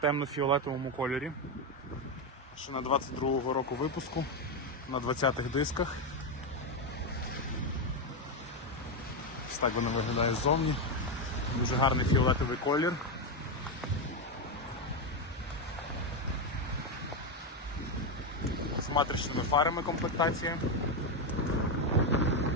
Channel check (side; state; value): both; normal; correlation 0.08